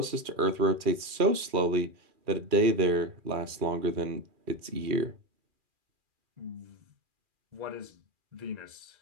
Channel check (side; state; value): left; late; 2.4 ms